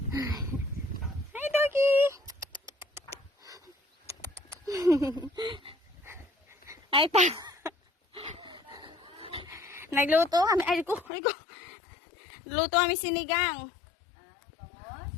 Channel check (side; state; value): right; drops out; at 11.1 s